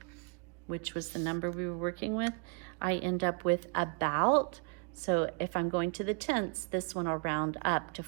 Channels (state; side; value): quieter; left; 37.3 dB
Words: which was the number we were working with, I end up with about. So if I'm going to the tenths, this one will round up to